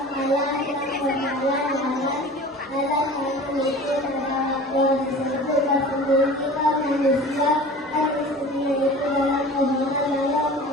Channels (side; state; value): both; normal; correlation 0.40